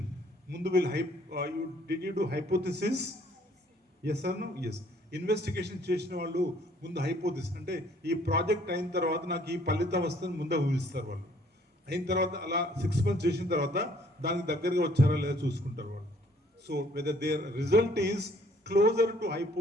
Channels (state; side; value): normal; both; correlation 0.61